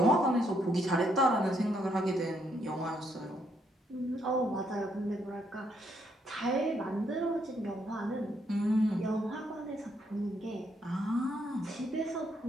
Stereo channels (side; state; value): both; normal; correlation 0.73